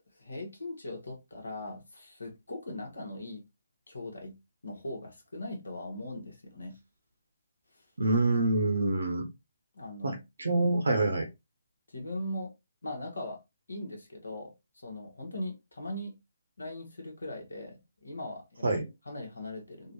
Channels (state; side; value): inverted; both; correlation -0.76